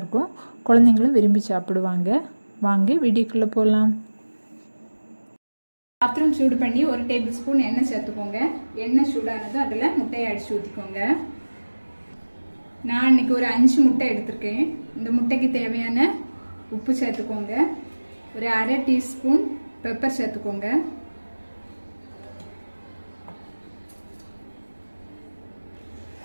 இருக்கும். குழந்தைகளும் விரும்பி சாப்பிடுவாங்க. வாங்க வீடியோக்குள்ள போலாம். பாத்திரம் சூடு பண்ணி 1 டேபிள்ஸ்பூன் எண்ணெய் சேர்த்துக்கோங்க. எண்ணெய் சூடானதும் அதுல முட்டையை அடிச்சு ஊத்திக்கோங்க. நான் இன்னைக்கு ஒரு 5 முட்டை எடுத்துர்க்கேன். இந்த முட்டைக்கு தேவையான உப்பு சேர்த்துக்கோங்க. ஒரு 1/2 டீஸ்பூன் பெப்பர் சேர்த்துக்கோங்க.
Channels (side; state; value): both; inverted; correlation -1.00